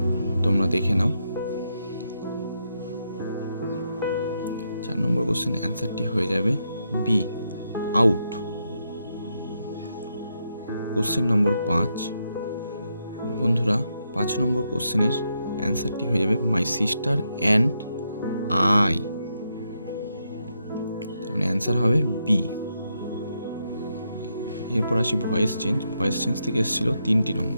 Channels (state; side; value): inverted; both; correlation -0.81